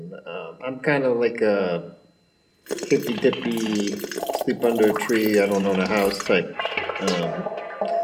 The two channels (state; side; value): identical; both; correlation 1.00